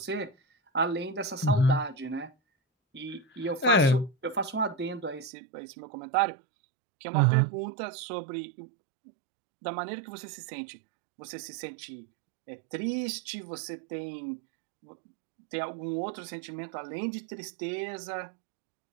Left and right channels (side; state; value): left; drops out; at 5.3 s